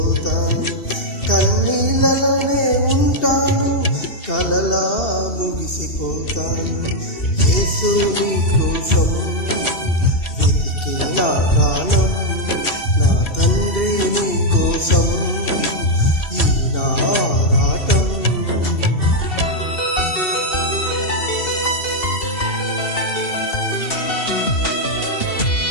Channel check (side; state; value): right; late; 2.7 ms